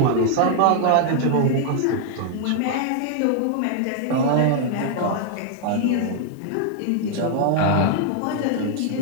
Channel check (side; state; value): both; different; correlation 0.00